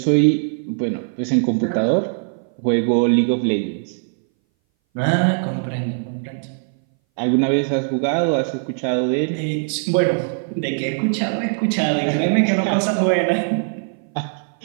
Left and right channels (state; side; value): silent; left; 61 dB below the other